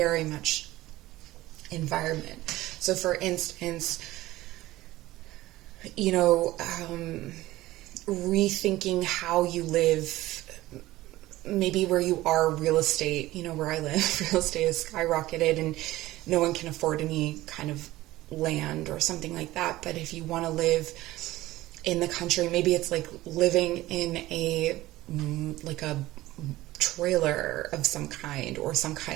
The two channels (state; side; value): quieter; left; 17.0 dB